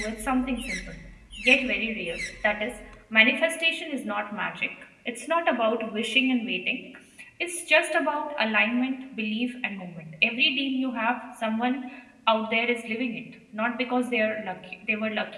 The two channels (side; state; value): both; identical; correlation 1.00